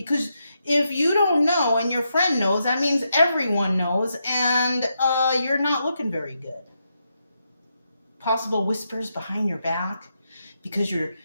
if you don't know and your friend knows, that means everyone knows, and you're not looking very good. Possible whispers behind your back because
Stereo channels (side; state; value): both; inverted; correlation -0.83